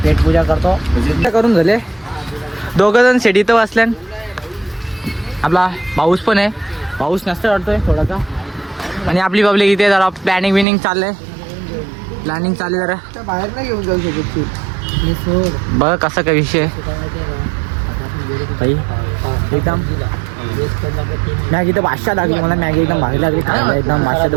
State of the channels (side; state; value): left; drops out; at 10.7 s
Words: पेट पूजा करतो. करून झाले. 2 जण शेडीत बसल्या. आपला पाऊस पण आहे, पाऊस नसतं वाटतोय थोडासा. आणि आपली पब्लिक इथे जरा प्लॅनिंग चाललंय. प्लॅनिंग चालली जरा बाहेर नाही घेऊन जाऊ शकत. बघ कसा काय विषय भाई. एकदम मॅगी तर 500 लागली मला. मॅगी एकदम भारी लागली खायला, एकदम 500